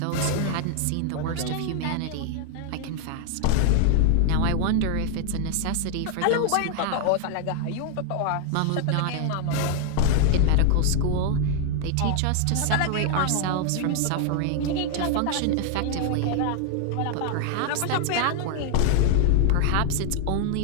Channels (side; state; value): both; different; correlation 0.00